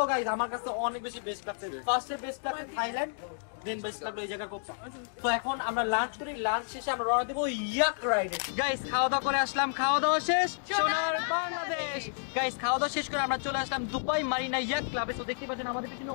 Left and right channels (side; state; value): right; silent; digital silence